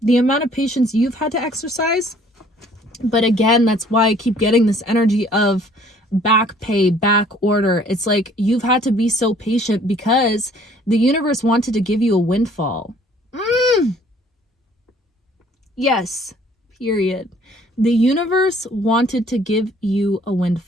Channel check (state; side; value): normal; both; correlation 0.57